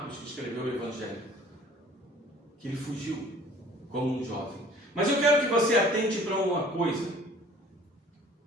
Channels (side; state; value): both; normal; correlation 0.51